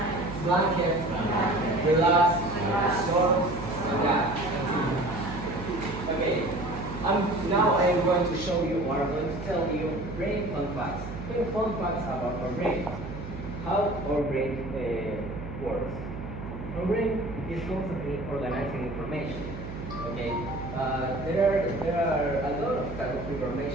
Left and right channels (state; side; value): noise; right; hum, 10 dB below the sound